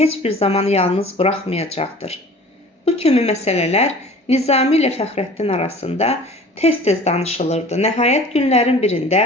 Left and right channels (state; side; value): normal; both; correlation 0.44